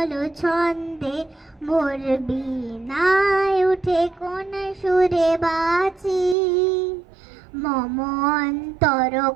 ছন্দে মোর বীণায় উঠে কোন সুরে বাঁচি মম অন্তর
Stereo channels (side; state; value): left; drops out; at 6.4 s